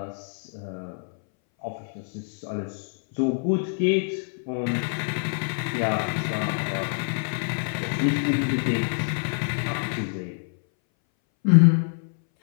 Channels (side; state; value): right; silent; 59 dB below the other